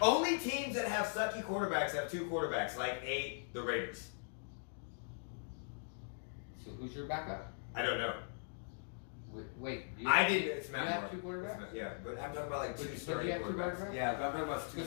teams that have sucky quarterbacks have 2 quarterbacks, like the Raiders. So who's your backup? I don't know. Wait. I didn't. It's Matt You have Moore. 2 quarterbacks? Yeah, but I'm talking about like But 2 you starting have 2 quarterbacks. quarterbacks? Yeah, but I'm talking about 2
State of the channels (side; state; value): right; silent; digital silence